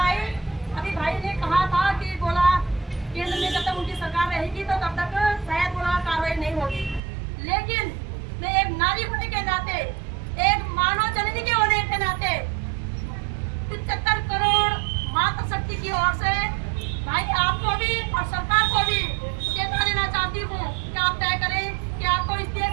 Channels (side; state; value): left; drops out; at 7.0 s